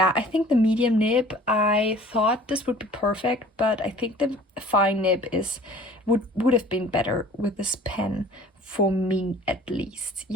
I think the medium nib, I thought this would be perfect, but I think the fine nib would have been better with this pen, for me at least.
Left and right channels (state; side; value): normal; both; correlation 0.48